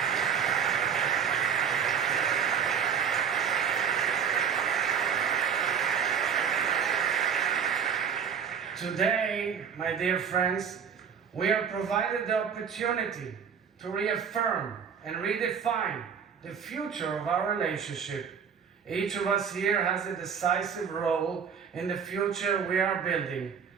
Today, my dear friends, we are provided the opportunity to reaffirm and redefine the future of our relationship. Each of us here has a decisive role in the future we are building.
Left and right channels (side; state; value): left; quieter; 7.3 dB